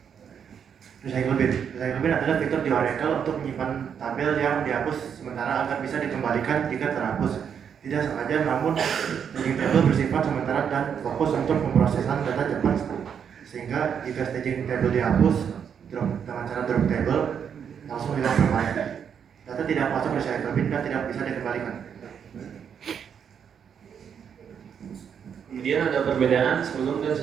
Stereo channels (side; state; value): left; quieter; 7.7 dB